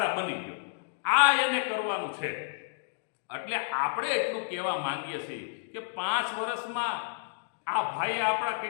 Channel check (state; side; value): silent; right; digital silence